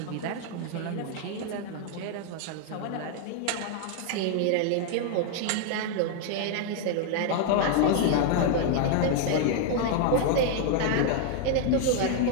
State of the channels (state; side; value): different; both; correlation 0.00